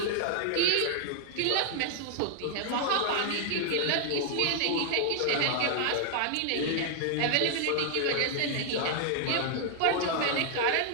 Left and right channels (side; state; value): both; different; correlation 0.00